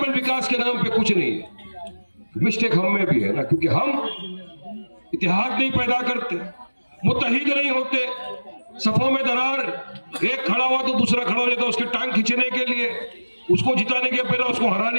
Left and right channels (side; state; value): both; inverted; correlation -1.00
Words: विकास के नाम पे कुछ नहीं है। मिस्टेक हम में भी है ना, क्योंकि हम इतिहाद नहीं पैदा करते, मुत्तहिद नहीं होते, सफों में दरार, एक खड़ा हुआ तो दूसरा खड़ा हो जाता है उसके टांग खींचने के लिए, उसको जिताने के पहले उसको